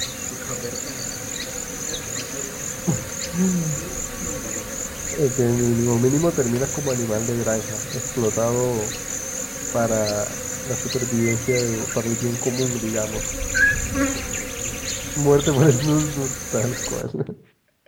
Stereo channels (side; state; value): both; identical; correlation 1.00